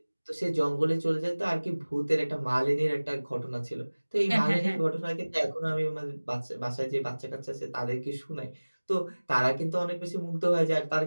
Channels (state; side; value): inverted; both; correlation -1.00